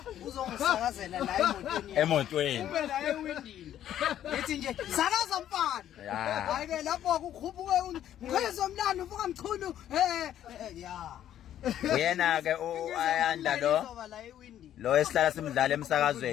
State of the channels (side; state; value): right; quieter; 11.2 dB